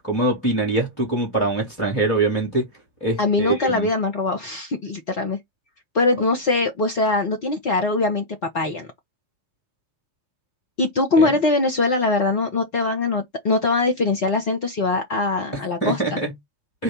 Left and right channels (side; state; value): right; late; 4.1 ms